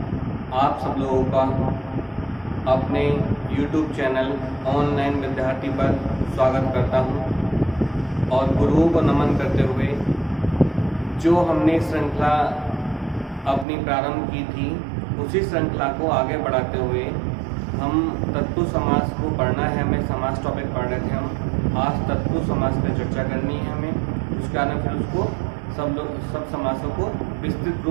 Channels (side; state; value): left; drops out; at 13.7 s